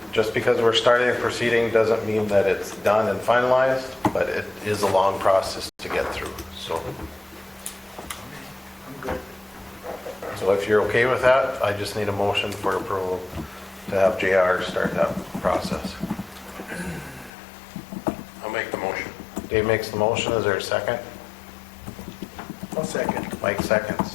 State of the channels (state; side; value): drops out; right; at 17.3 s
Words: Just because we're starting a proceeding doesn't mean that it's done and finalized, but it is a long process to get through. So, I'm good. so if you're okay with that, I just need a motion for approval to have JR start that process. I'll make the motion. Dave makes the motion. Is there a second? I'll second. Mike